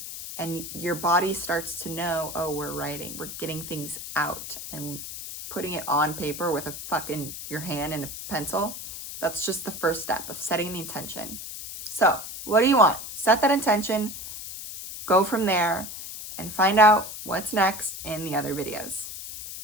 and your body starts to know, oh, we're writing, we're getting things out and putting it on paper with your hand and a pencil, that's just the first step of setting the intention. So what do you want? Set that intention, go from there, and find out what's next in the other videos.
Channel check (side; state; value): left; noise; hiss, 9 dB below the sound